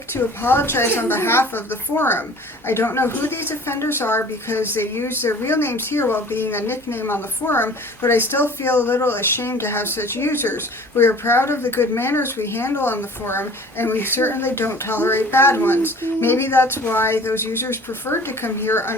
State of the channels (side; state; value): both; normal; correlation 0.46